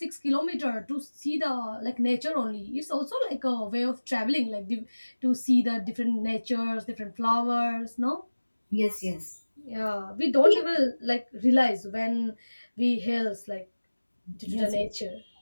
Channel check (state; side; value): inverted; both; correlation -1.00